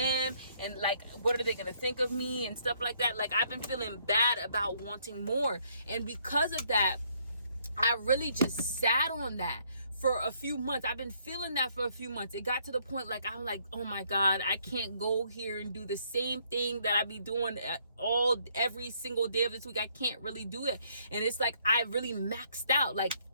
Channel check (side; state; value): both; inverted; correlation -0.68